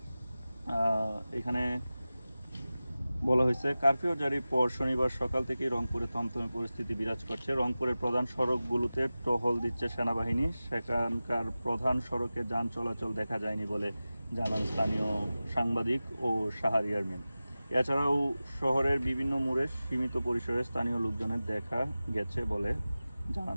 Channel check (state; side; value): inverted; both; correlation -0.96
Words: এখানে বলা হয়েছে, কারফিউ জারির পর শনিবার সকাল থেকেই রংপুরে থমথমে পরিস্থিতি বিরাজ করছে। রংপুরের প্রধান সড়কগুলোতে টহল দিচ্ছে সেনাবাহিনী। সেখানকার প্রধান সড়কে যান চলাচল দেখা যায়নি বলে জানান স্থানীয় সাংবাদিক ও শাহরিয়ার মিন। এছাড়াও শহরের বিভিন্ন মোড়ে সীমিত পরিসরে স্থানীয় লোকজনের দেখা গেছে বলে